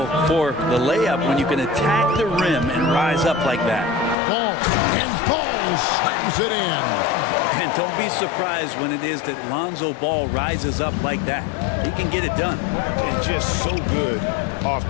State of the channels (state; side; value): drops out; right; at 4.2 s